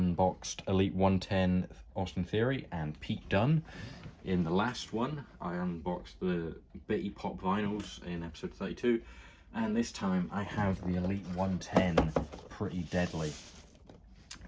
Elite 110 Austin Theory and Pete Dunne. In the last one I unboxed the Bitty Pop vinyls in episode 32, and this time I have the Elite 110 Pretty Deadly.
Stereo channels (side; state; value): both; identical; correlation 1.00